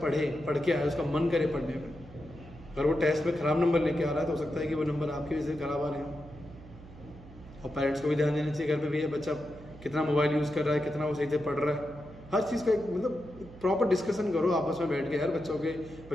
पढ़ के आए, उसका मन करे पढ़ने में। अगर वो टेस्ट में ख़राब नंबर लेके आ रहा है तो हो सकता है कि वो नंबर आपकी वजह से ख़राब आ रहे हो। और पेरेंट्स को भी ध्यान देना चाहिए घर पे भी, बच्चा कितना मोबाइल यूज़ कर रहा है, कितना वो सही से पढ़ रहा है। हर चीज़ का एक मतलब प्रॉपर डिस्कशन करो आपस में बैठ के यार। बच्चों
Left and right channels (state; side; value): noise; right; hum, 18 dB below the sound